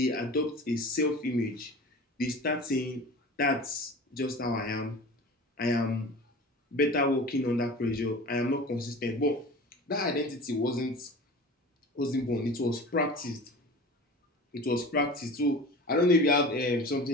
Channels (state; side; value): normal; both; correlation 0.37